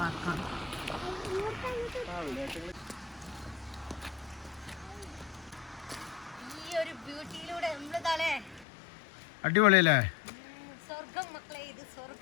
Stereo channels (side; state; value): right; drops out; at 8.7 s